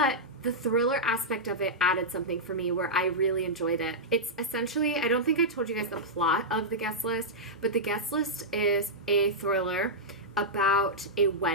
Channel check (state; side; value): normal; both; correlation -0.09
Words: the thriller aspect of it added something for me where I really enjoyed it. It's essentially, I don't think I told you guys the plot of The Guest List, but The Guest List is a thriller about a